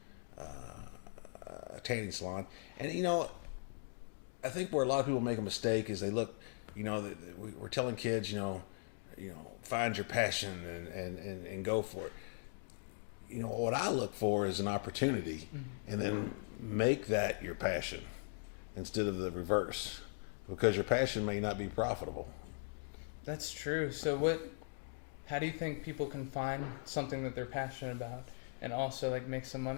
tanning salon, and I think where a lot of people make a mistake is they look, we're telling kids, find your passion and go for it. What I look for is an opportunity, and then make that your passion instead of the reverse, because your passion may not be profitable. That's true. So how do you think people can find something that they're passionate about and also like make some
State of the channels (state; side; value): silent; right; digital silence